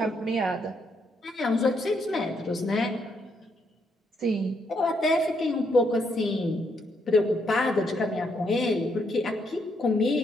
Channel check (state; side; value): normal; both; correlation 0.75